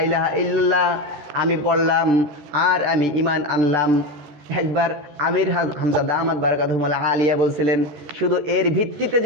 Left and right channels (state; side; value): late; left; 14 ms